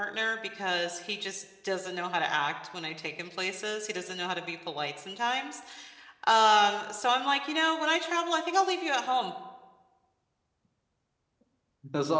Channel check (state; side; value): identical; both; correlation 1.00